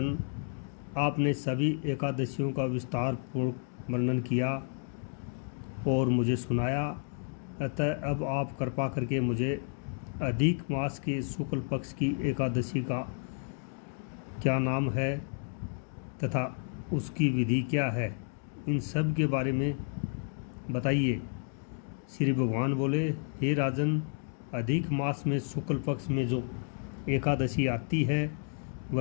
आपने सभी एकादशियों का विस्तार पूर्ण वर्णन किया और मुझे सुनाया, अतः अब आप कृपा करके मुझे अधिक मास के शुक्ल पक्ष की एकादशी का क्या नाम है तथा उसकी विधि क्या है, इन सब के बारे में बताइए। श्री भगवान बोले, हे राजन, अधिक मास में शुक्ल पक्ष में जो एकादशी आती है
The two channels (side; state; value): right; silent; 57 dB below the other